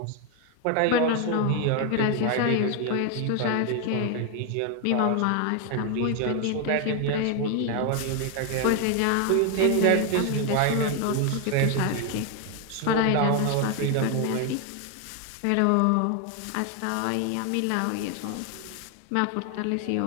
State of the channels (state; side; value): different; both; correlation 0.01